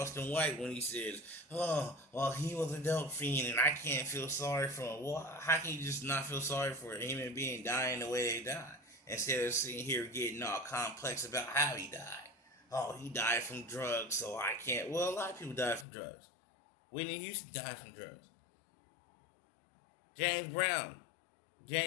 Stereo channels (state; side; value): drops out; right; at 15.9 s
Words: White when he says, "Oh, well, he was a dope fiend, and I can't feel sorry for him." Well, how can you just not feel sorry for a human being dying the way they died, instead of sitting here getting all complex about how he died? Oh, he died from drugs, so I can't. Well, a lot of people died from drugs. Whitney Houston died from drugs. James Brown.